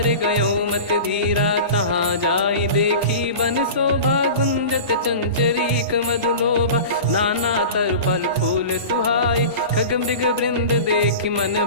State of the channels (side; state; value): both; inverted; correlation -0.33